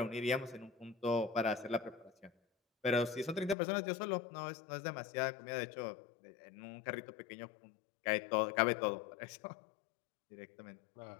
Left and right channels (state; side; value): drops out; right; at 3.6 s